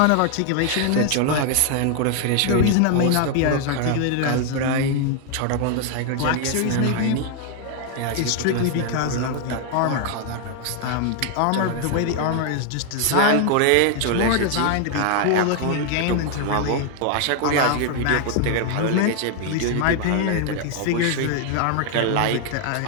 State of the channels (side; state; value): both; different; correlation 0.00